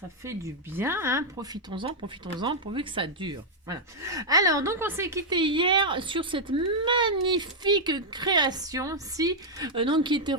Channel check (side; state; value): both; normal; correlation -0.04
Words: fait du bien, hein, profitons-en pourvu que ça dure. Voilà. Alors donc on s'est quitté hier sur cette magnifique création, donc qui était